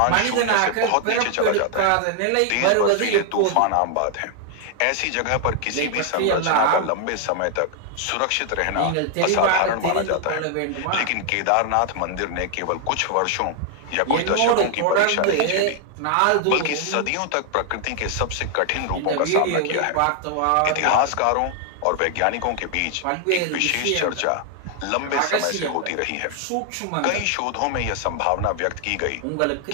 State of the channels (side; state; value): both; different; correlation 0.00